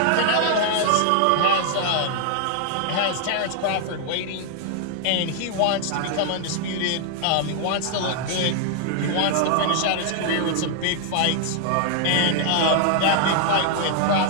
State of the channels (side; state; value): both; different; correlation 0.00